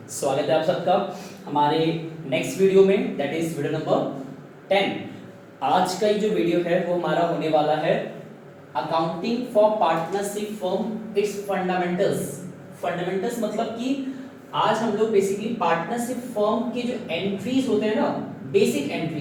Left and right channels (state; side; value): identical; both; correlation 1.00